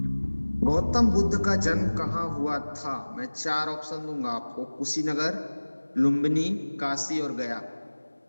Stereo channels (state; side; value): inverted; both; correlation -1.00